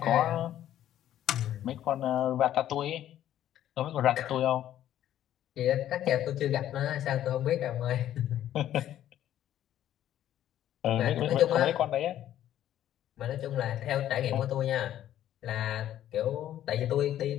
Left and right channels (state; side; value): quieter; right; 11.9 dB